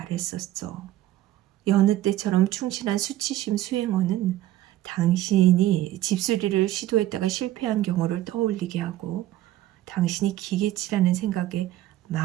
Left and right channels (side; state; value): left; quieter; 14.4 dB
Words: 여느 때처럼 충실한 수치심 수행원은 당신이 집수리를 시도했다가 실패한 경우를 떠올리게 하고 당신이 기계치라는 생각에